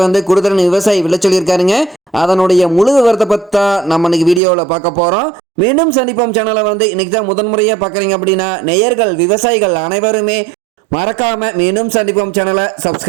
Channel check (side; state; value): left; drops out; at 4.4 s